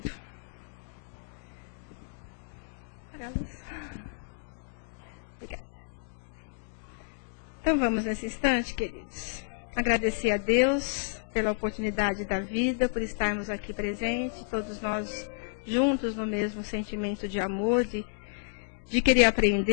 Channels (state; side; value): silent; right; digital silence